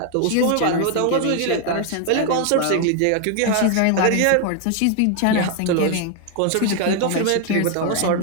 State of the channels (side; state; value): both; different; correlation 0.00